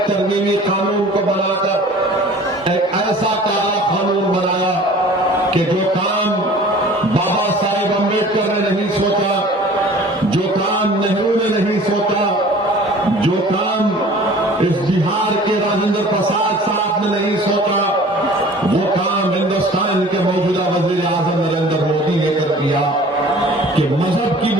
तरमीमी कानून को बनाकर एक ऐसा काला कानून बनाया कि जो काम बाबा साहेब अम्बेडकर ने नहीं सोचा, जो काम नेहरू ने नहीं सोचा, जो काम इस बिहार के राजेंद्र प्रसाद साहब ने नहीं सोचा, वो काम हिंदुस्तान के मौजूदा वजीर आजम नरेंद्र मोदी ने कर दिया कि मजहब की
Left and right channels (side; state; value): both; normal; correlation 0.46